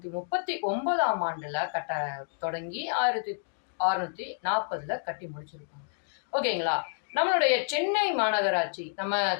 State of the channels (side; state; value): right; silent; digital silence